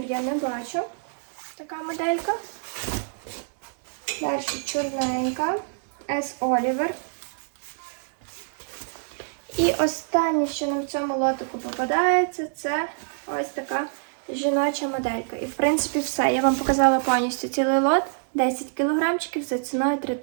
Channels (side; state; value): left; silent; digital silence